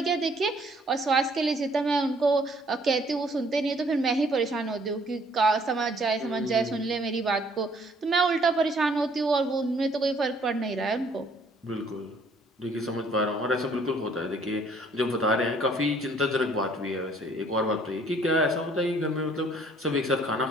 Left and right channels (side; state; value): both; normal; correlation 0.61